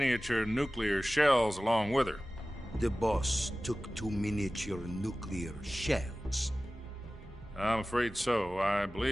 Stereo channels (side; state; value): both; normal; correlation 0.97